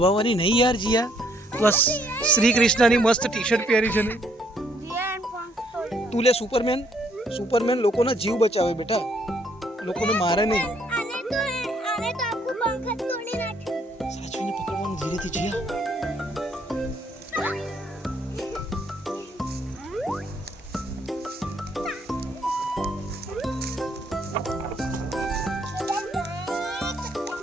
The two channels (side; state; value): both; normal; correlation 0.68